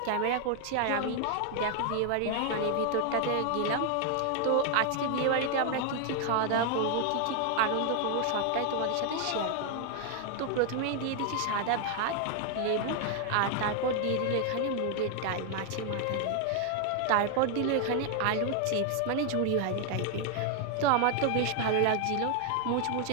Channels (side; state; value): both; different; correlation 0.00